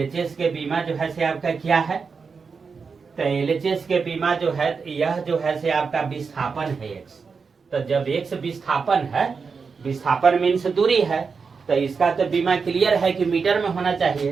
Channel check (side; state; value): left; quieter; 5.2 dB